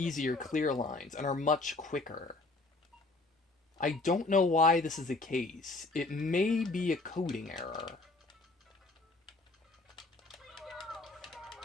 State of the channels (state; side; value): quieter; right; 3.3 dB